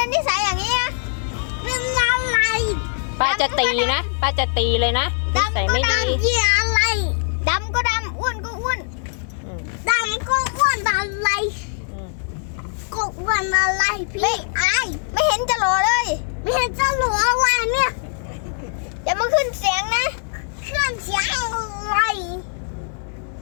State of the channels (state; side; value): silent; right; digital silence